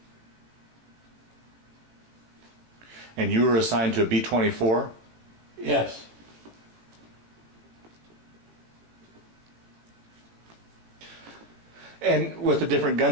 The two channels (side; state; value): left; late; 18 ms